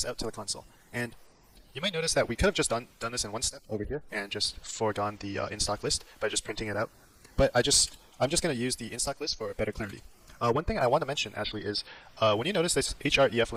out to the console. And you might notice that we could have just done this in one step over here and just foregone the in-stock list by just printing it out. But I'm just going to use the in-stock list for better clarity. One thing I want to mention actually is when you notice this href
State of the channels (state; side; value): identical; both; correlation 1.00